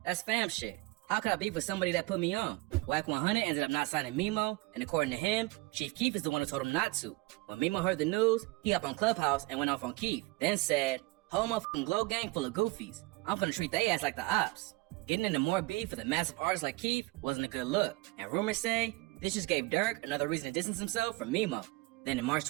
That's fam shit. How could I beef with somebody that put me on?" YNR ended up not signing Memo, and according to him, Chief Keef is the one who told him not to. When Memo heard the news, he hopped on Clubhouse and went off on Keef, then said, "Whole motherfucking Glow gang full of goofies. I'm gonna treat they ass like the ops. Getting into more beef with a massive artist like Keith wasn't a good look, and rumors say this just gave Dirk another reason to distance himself from Memo. Then in March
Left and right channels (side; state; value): left; quieter; 22.9 dB